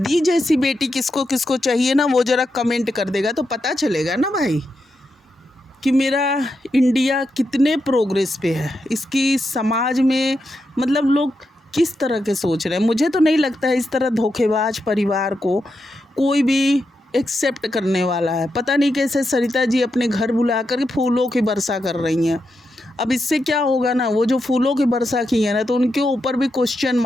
जैसी बेटी किसको किसको चाहिए ना, वो ज़रा कमेंट कर देगा तो पता चलेगा ना भाई कि मेरा इंडिया कितने प्रोग्रेस पे है, इसकी समाज में मतलब लोग किस तरह के सोच रहे हैं। मुझे तो नहीं लगता है इस तरह धोखेबाज परिवार को कोई भी एक्सेप्ट करने वाला है। पता नहीं कैसे सरिता जी अपने घर बुला कर फूलों की वर्षा कर रही हैं। अब इससे क्या होगा ना, वो जो फूलों की वर्षा की है ना, तो उनके ऊपर भी क्वेश्चन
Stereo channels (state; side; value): normal; both; correlation 0.85